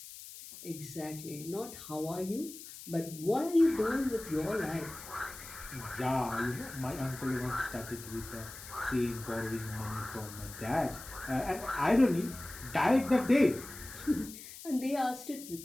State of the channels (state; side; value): noise; left; hiss, 14 dB below the sound